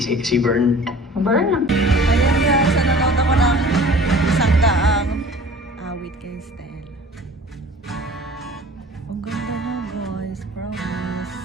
Vern. Burn. Ayan guys, nanonood ako ng isang daang awit kay Stella. Ang ganda na guys,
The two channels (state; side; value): normal; both; correlation 0.46